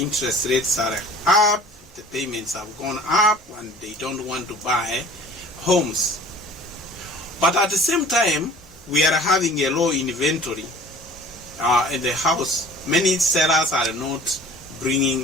interest rates are up, the payments have gone up, and they don't want to buy homes. But at the same time, we are having a low inventory in the house. Many sellers are not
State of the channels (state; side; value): normal; both; correlation 0.46